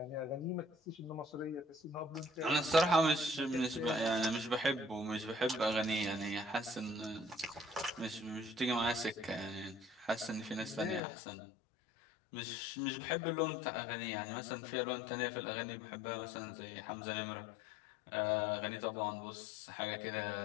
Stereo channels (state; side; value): drops out; right; at 11.0 s